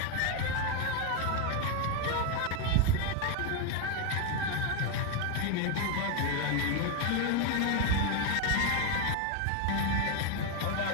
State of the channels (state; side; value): different; both; correlation 0.02